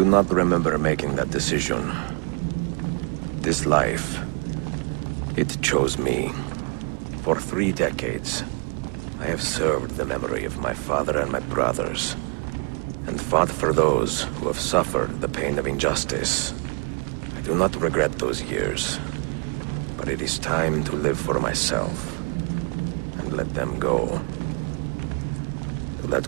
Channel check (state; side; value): quieter; left; 37.2 dB